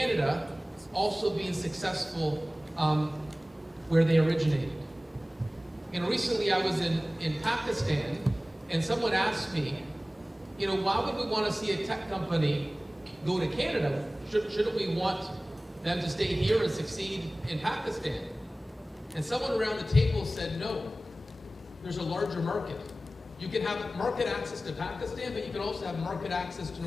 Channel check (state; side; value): normal; both; correlation 0.97